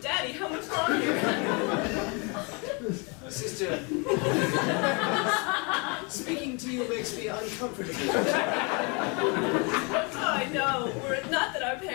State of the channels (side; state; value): right; quieter; 32.3 dB